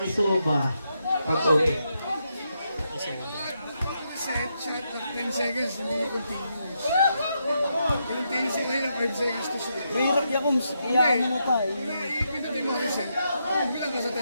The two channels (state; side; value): inverted; both; correlation -0.82